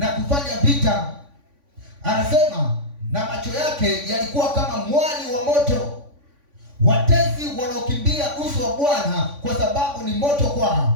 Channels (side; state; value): left; late; 3.5 ms